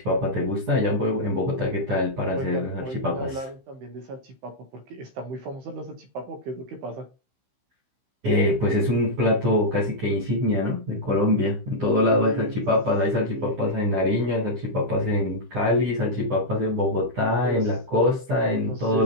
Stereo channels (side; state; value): left; late; 15 ms